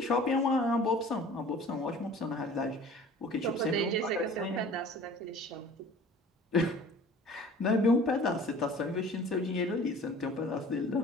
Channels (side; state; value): both; normal; correlation 0.46